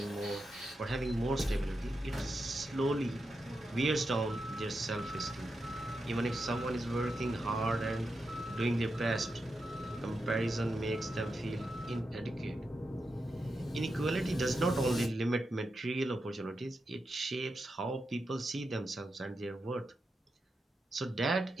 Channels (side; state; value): both; normal; correlation 0.87